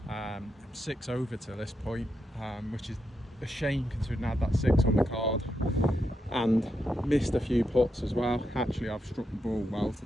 I'm 6 over to this point, which is a shame considering I had that 6 on the card and missed a few putts as well. Actually, I've struck the ball well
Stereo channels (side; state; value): both; normal; correlation 0.84